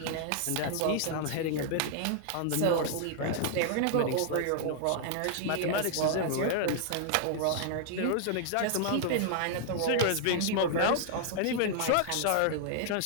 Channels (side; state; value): both; different; correlation -0.01